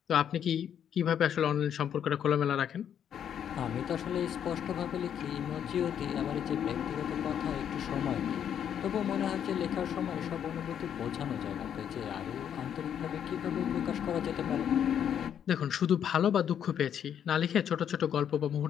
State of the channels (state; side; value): quieter; right; 9.0 dB